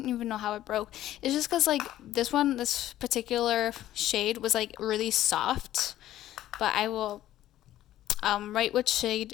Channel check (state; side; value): quieter; right; 13.4 dB